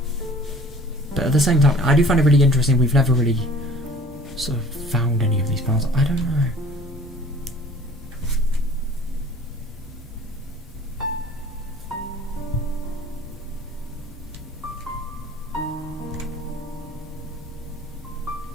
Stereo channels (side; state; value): both; normal; correlation 0.48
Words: But at the same time, I do find it really interesting. We've never really sort of found any of these parasites. I don't know.